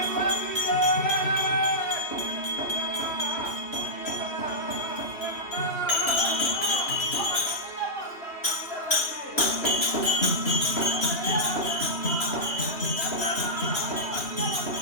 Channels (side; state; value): right; late; 2.9 ms